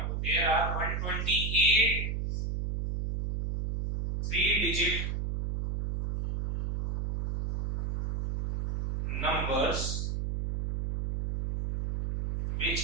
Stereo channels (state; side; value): noise; right; hum, 1 dB below the sound